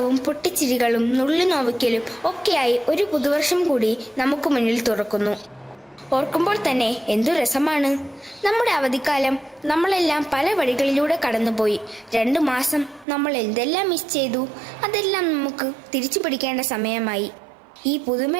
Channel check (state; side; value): drops out; left; at 13.1 s